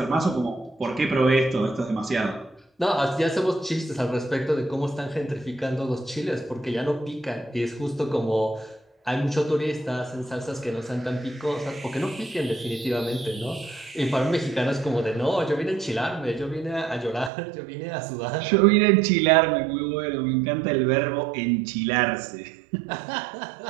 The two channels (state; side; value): drops out; left; at 17.3 s